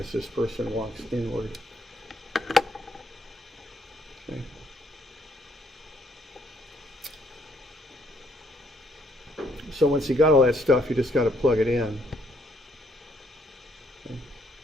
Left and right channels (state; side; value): normal; both; correlation 0.68